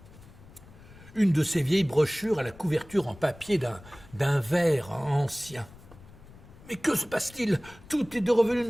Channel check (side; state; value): left; noise; rumble, 21 dB below the sound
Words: Une de ces vieilles brochures à la couverture en papier d'un verre ancien. Mais que se passe-t-il? Tout est revenu